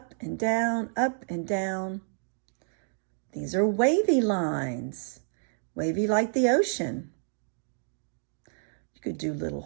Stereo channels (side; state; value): left; silent; digital silence